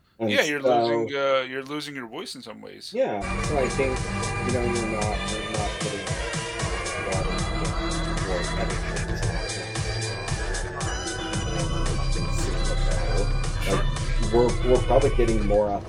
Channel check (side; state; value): both; identical; correlation 1.00